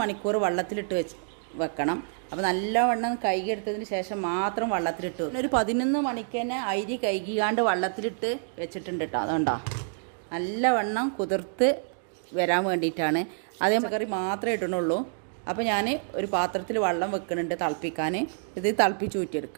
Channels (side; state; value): left; silent; digital silence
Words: മണിക്കൂർ വെള്ളത്തിലിട്ട് വെക്കണം. അപ്പോൾ നല്ലവണ്ണം കഴുകി എടുത്തതിന് ശേഷം മാത്രം വെള്ളത്തിലിട്ട് വെക്കും. ഒരു 11 മണിക്ക് തന്നെ അരി കഴുകിയാണ്ട് വെള്ളത്തിലിട്ട് വെച്ചിട്ടുണ്ട് കേട്ടോ. അതുകൊണ്ടാ നല്ലവണ്ണം കുതിർത്ത് വരാൻ വേണ്ടിയിട്ടാണ്. അതേ കറി മാത്രമേ ഇടണുള്ളൂ. അപ്പോൾ ഞാൻ ഒരു പാത്രത്തിൽ വെള്ളം വെക്കുന്നുണ്ട് തിളപ്പിക്കാൻ. ഇത് തിളപ്പിച്ച്